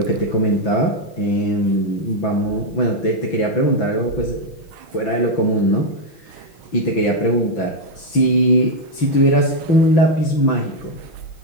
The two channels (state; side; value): late; right; 6.0 ms